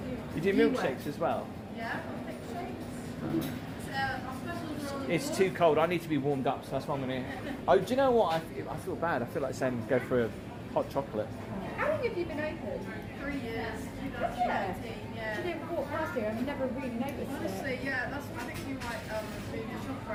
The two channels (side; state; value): both; identical; correlation 1.00